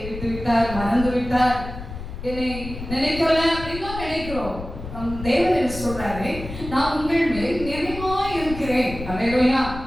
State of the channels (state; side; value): noise; left; rumble, 10 dB below the sound